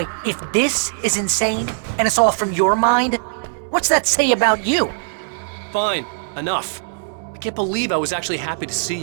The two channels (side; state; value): left; silent; digital silence